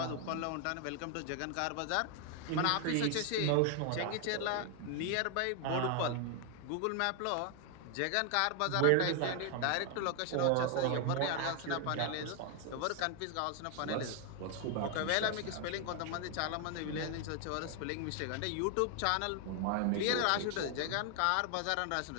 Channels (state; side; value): different; both; correlation 0.00